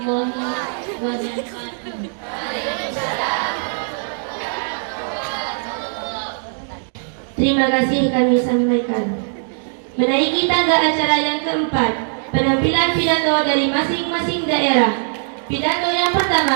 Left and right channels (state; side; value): silent; left; digital silence